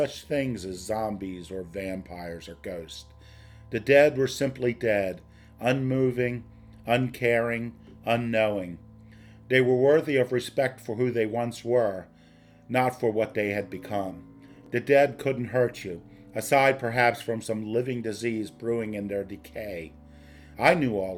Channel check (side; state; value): both; identical; correlation 1.00